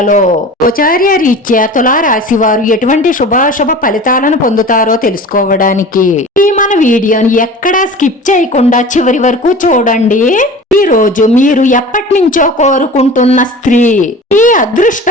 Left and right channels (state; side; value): normal; both; correlation 0.38